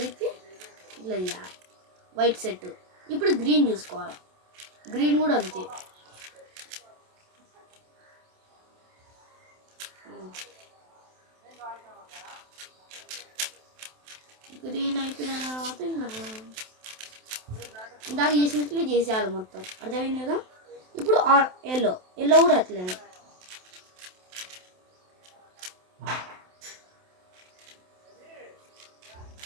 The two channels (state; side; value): late; left; 27 ms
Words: తిప్పి ఇట్లా చేయాలి. White set. ఇప్పుడు గ్రీన్ చూసుకోవాలి. గ్రీన్ కూడా అంతే. గ్రీన్ అయిపోయిన తర్వాత ఇందాక చేసినట్లే చేసేయాలి మొత్తం. అర్థమైంది కదా? ఇప్పుడు ఎల్లో, ఎల్లో కూడా అట్లనే.